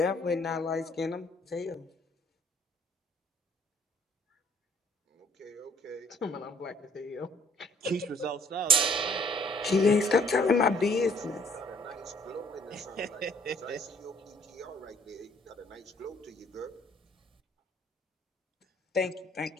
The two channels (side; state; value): both; normal; correlation 0.59